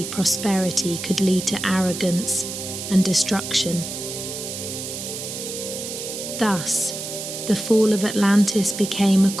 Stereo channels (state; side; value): noise; right; hiss, 7 dB below the sound